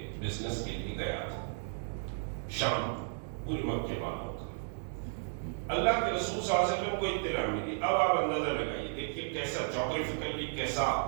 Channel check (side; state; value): left; silent; digital silence